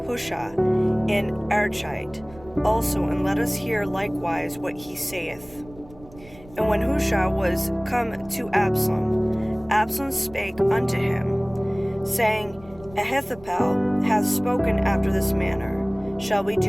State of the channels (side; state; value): right; noise; rumble, 22 dB below the sound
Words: Hushai and Archite also, and let us hear likewise what he saith. And when Hushai was come to Absalom, Absalom spake unto him, saying, Ahithophel hath spoken after this manner. Shall we